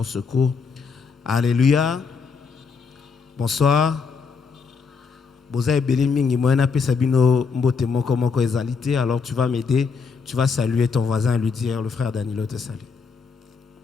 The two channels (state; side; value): quieter; right; 5.3 dB